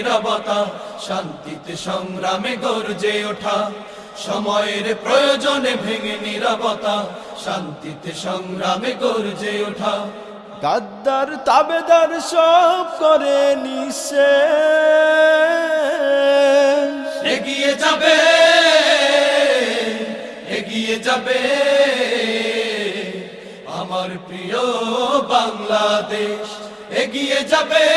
শান্তিতে সংগ্রামে গর্জে ওঠা। সময়ের প্রয়োজনে ভেঙে নীরবতা, শান্তিতে সংগ্রামে গর্জে ওঠা। গাদ্দার তাবেদার সব করে নিঃশেষ, এগিয়ে যাবে, এগিয়ে যাবে আমার প্রিয় বাংলাদেশ। এগিয়ে যাবে,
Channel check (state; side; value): identical; both; correlation 1.00